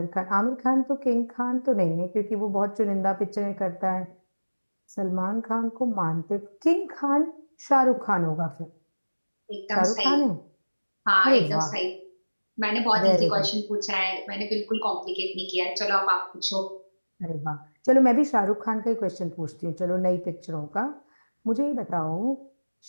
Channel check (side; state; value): both; inverted; correlation -1.00